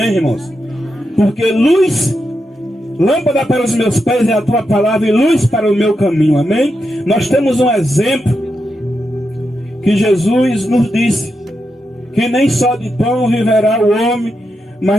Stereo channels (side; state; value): both; normal; correlation 0.86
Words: irmãos? Porque luz, lâmpada para os meus pés é a tua palavra e luz para o meu caminho, amém? Nós temos um exemplo que Jesus nos disse, que nem só de pão viverá o homem, mas